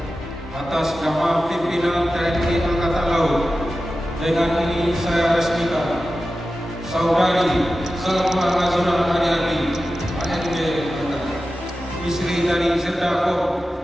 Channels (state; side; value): normal; both; correlation 0.94